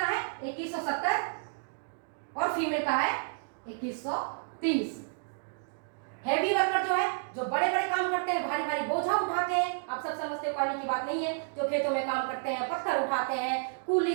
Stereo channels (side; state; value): left; silent; digital silence